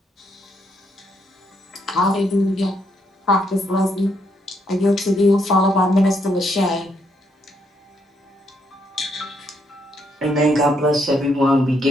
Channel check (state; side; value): normal; both; correlation 0.75